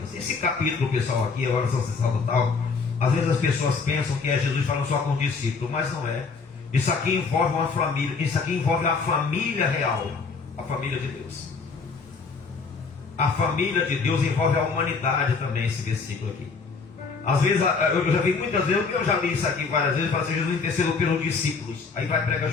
Esse capítulo, pessoal, aqui, a oração sacerdotal, às vezes as pessoas pensam que é Jesus falando só com o discípulo, mas não é. Isso aqui envolve uma família, isso aqui envolve a família real, a família de Deus. A família de Deus envolve a humanidade também, esse versículo aqui. Às vezes, eu já vi muitas vezes, eu já li isso aqui várias vezes, fala assim: Jesus intercedeu pelos discípulos. Aí vai pregar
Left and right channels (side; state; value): right; quieter; 4.8 dB